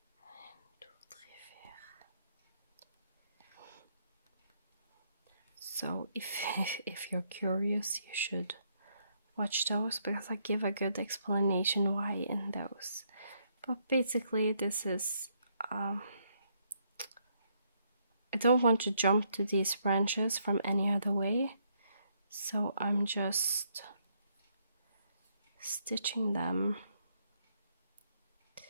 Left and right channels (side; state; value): both; inverted; correlation -0.73